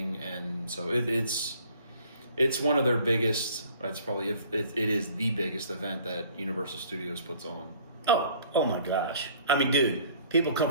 and so it's one of their biggest. It's probably it is the biggest event that Universal Studios puts on. Oh my gosh! I mean, dude, people come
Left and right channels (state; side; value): inverted; both; correlation -0.54